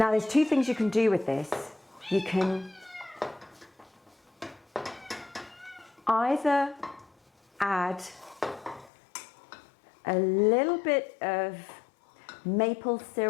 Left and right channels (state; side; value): drops out; right; at 8.9 s